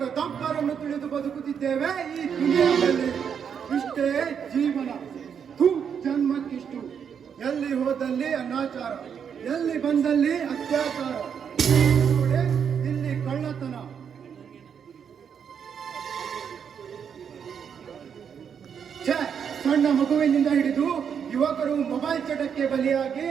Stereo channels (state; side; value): quieter; left; 7.5 dB